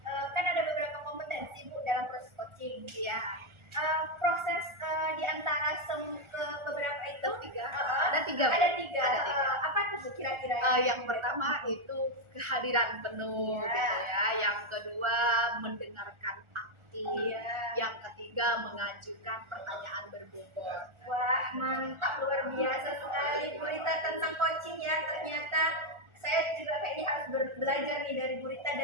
kan ada beberapa kompetensi Bu dalam proses coaching. Iya. Proses di antara beberapa itu Ada tiga. Bu. ada tiga. Ada tiga. Apa tuh Bu kira-kira? Yang pertama itu kehadiran penuh Iya. gitu ya. Yang kedua mendengarkan aktif. Iya. Yang ketiga mengajukan pertanyaan berbobot. Wah, mantap, luar biasa sekali Bu Rita tentang coaching ya. Ternyata saya juga kayaknya harus belajar nih dari Bu Rita.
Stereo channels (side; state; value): left; late; 1.4 ms